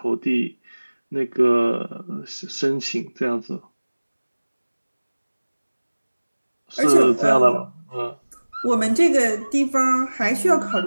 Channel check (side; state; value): both; inverted; correlation -1.00